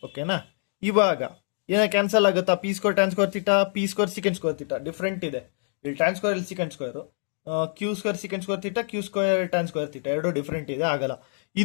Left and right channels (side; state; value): right; silent; 61 dB below the other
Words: ಓಕೆನಾ? ಇವಾಗ ಏನ ಕ್ಯಾನ್ಸಲ್ ಆಗುತ್ತಾ? P square tan square theta, p square secant square theta different ಇದೆ. ಇಲ್ಲಿ ಟ್ಯಾನ್ ಸ್ಕ್ವೇರ್, ಇಲ್ಲಿ secant square. Q square secant square theta, q square tan square theta ಎರಡು ಡಿಫ್ರೆಂಟ್ ಇದೆ, ಆಗಲ್ಲ.